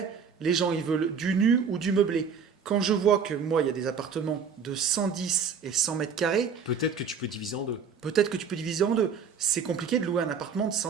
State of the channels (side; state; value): left; quieter; 6.2 dB